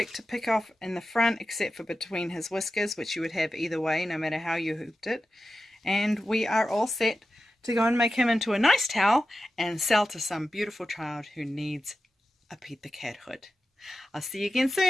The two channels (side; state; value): both; normal; correlation 0.93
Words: to pick off in the front except for between his whiskers, which you would have either way no matter how you hooped it. And we are all set to go and make him into a nice towel and sell to some beautiful child who needs a Pete the Cat hood. I'll see you again